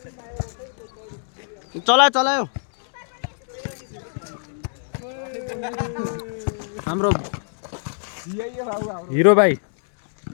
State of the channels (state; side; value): silent; right; digital silence